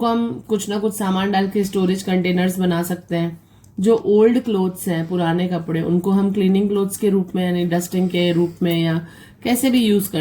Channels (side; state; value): both; identical; correlation 1.00